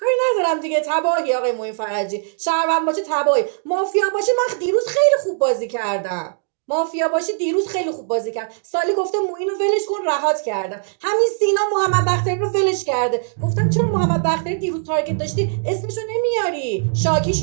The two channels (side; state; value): left; silent; digital silence